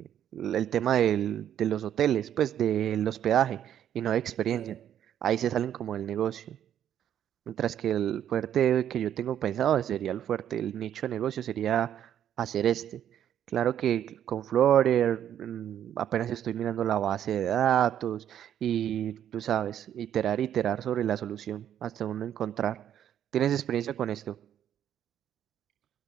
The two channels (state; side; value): quieter; left; 10.2 dB